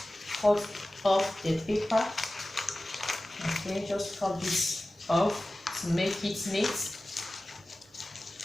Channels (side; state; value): both; normal; correlation 0.96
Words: cut off the paper. Okay, just cut this off to make it neat.